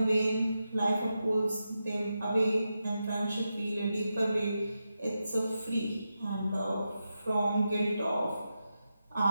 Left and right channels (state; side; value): inverted; both; correlation -0.89